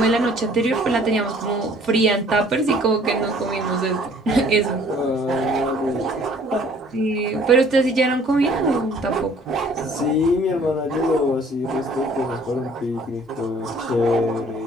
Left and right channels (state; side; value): normal; both; correlation 0.56